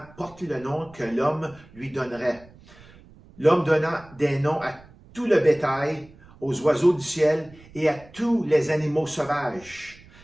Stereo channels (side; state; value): right; noise; rumble, 23 dB below the sound